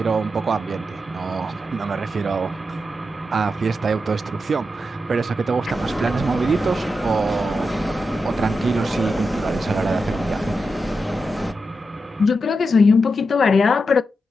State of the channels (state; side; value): normal; both; correlation 0.87